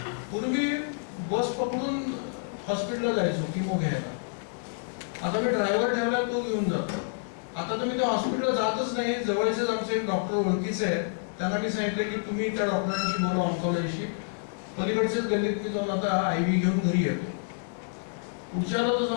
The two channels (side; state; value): right; silent; digital silence